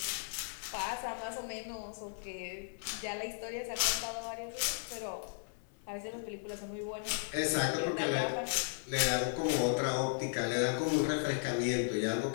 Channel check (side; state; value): right; silent; 54 dB below the other